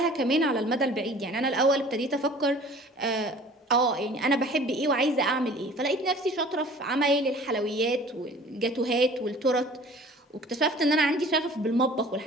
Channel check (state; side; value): normal; both; correlation 0.47